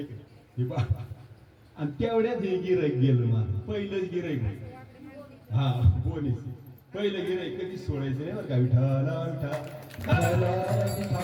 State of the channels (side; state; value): both; identical; correlation 1.00